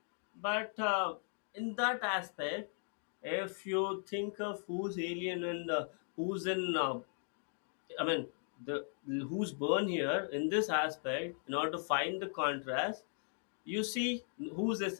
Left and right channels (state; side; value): silent; right; 52 dB below the other